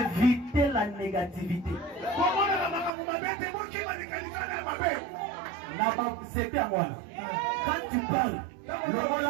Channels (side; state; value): left; drops out; at 2.9 s